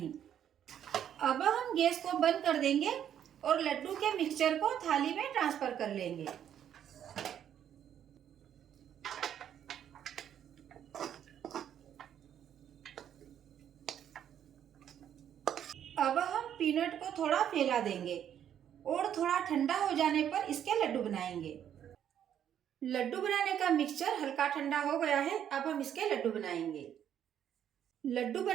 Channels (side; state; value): left; quieter; 9.7 dB